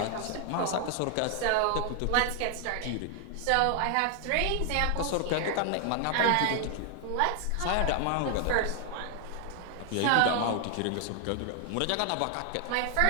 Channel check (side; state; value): both; different; correlation 0.00